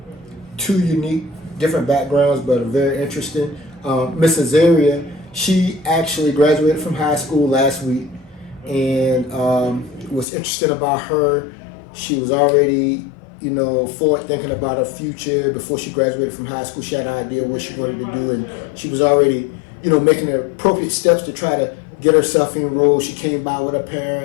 two unique, different backgrounds, but are very interesting. Miss Azaria, she actually graduated from high school last week, and what's interesting about her, she was already forward thinking about her future. Before she graduated from high school, she had an idea what she wanted to do, and she was already, making the appropriate steps to try to get herself enrolled. She came by with her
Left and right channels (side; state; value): right; drops out; at 10.2 s